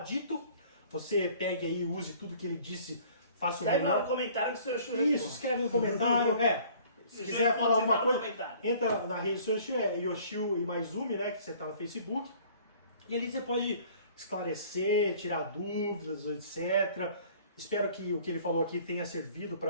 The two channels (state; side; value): inverted; both; correlation -0.53